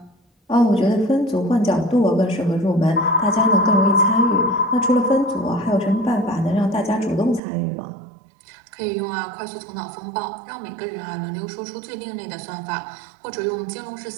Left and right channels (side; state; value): left; drops out; at 7.4 s